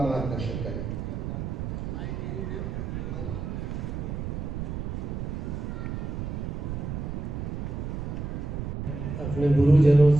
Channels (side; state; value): right; noise; rumble, 4 dB below the sound